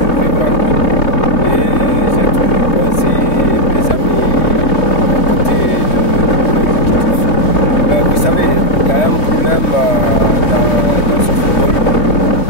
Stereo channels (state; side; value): late; right; 3.0 ms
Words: vivre en groupe. Et j'ai toujours conseillé mes amis à côté de l'exécutif. Mais vous savez, il y a un problème dans ce football.